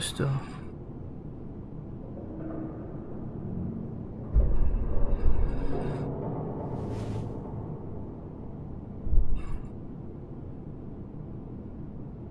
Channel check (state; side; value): identical; both; correlation 1.00